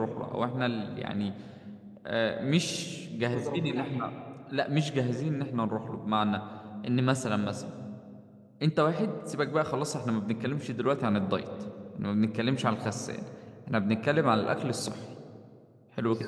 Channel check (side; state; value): both; identical; correlation 1.00